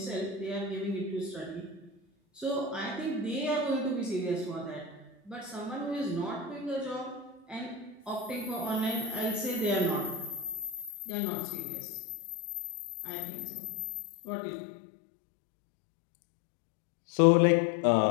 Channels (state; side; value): drops out; right; at 10.9 s